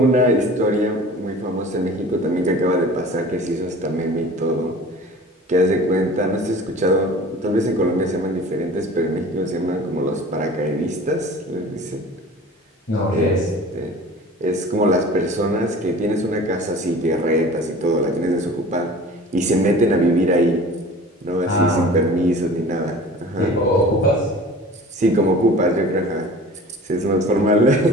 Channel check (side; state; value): both; normal; correlation 0.42